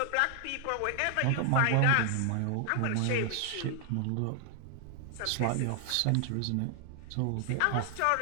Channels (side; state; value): both; different; correlation 0.00